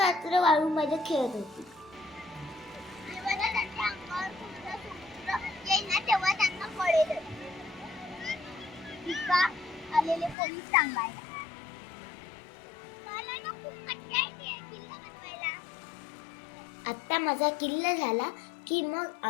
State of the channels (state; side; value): drops out; right; at 10.4 s